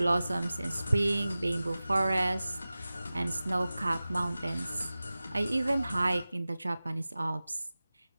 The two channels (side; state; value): both; inverted; correlation -0.97